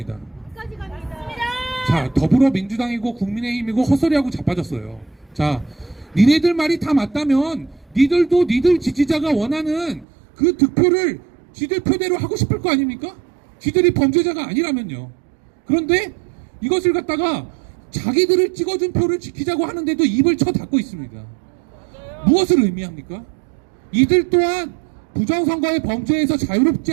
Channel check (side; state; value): left; drops out; at 10.1 s